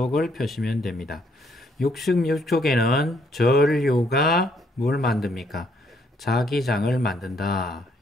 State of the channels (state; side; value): normal; both; correlation 0.69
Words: 펴시면 됩니다. 66쪽에는 전류가 뭘 만듭니까? 자기장을 만든다.